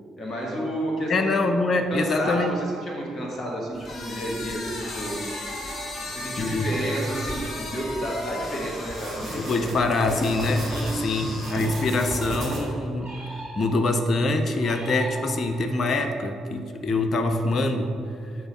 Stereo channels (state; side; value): normal; both; correlation 0.75